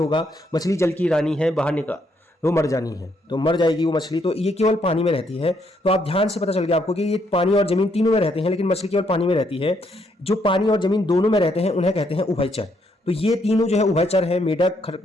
मछली जल की रानी है, बाहर निकल वो मर जानी है, तो मर जाएगी वो मछली। तो ये केवल पानी में रहती है। तो आप ध्यान से पता चल गया आपको कि ये पानी और जमीन तीनों में रहते हैं, लेकिन मछली केवल पानी में रहती है। जो पानी और जमीन दोनों में रहते हैं उन्हें कहते हैं उभयचर। तो ये तीनों जो है उभयचर है, मेढक,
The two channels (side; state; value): both; normal; correlation 0.73